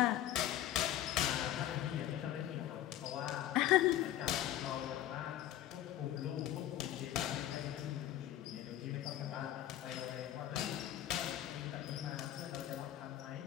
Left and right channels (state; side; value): quieter; right; 12.8 dB